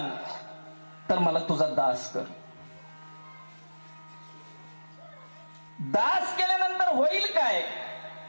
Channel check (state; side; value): inverted; both; correlation -1.00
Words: तर मला तुझा दास कर. दास केल्यानंतर होईल काय